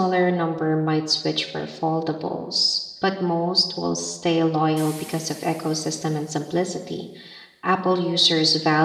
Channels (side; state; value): both; identical; correlation 1.00